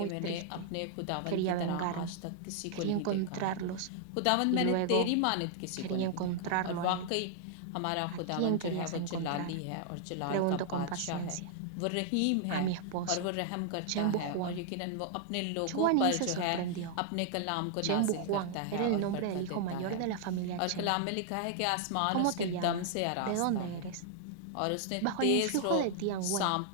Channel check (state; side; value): different; both; correlation -0.01